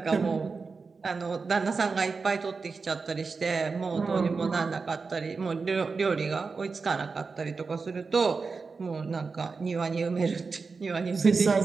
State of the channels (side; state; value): left; quieter; 4.6 dB